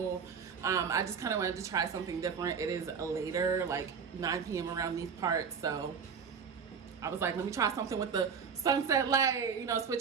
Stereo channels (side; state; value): left; quieter; 6.3 dB